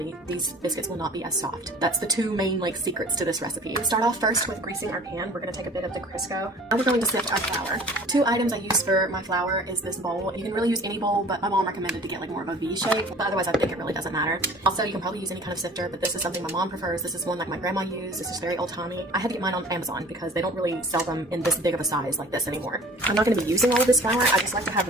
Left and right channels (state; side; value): normal; both; correlation 0.46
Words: these biscuits will not be as soft. That's the 2 main secrets to this recipe. We start off first with greasing our pan. We're going to take a bit of the Crisco. Now we're going to sift our flour. 2 items I use for my flour is this bowl. You can really use any bowl, but my mom recommended to get like more of a V shape, but otherwise I think it really doesn't matter. Also, you can probably use any kind of sifter, but this is something my mom prefers. This is one like my grandma used. This is very old-timey. I had to get mine on Amazon because they don't really sell them in this big of a size like this anymore. I'm not going to be using all of this flour. I just like to have